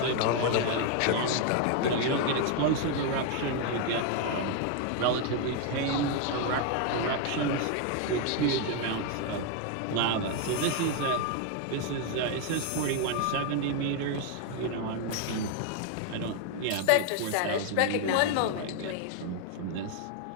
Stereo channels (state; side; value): different; both; correlation 0.01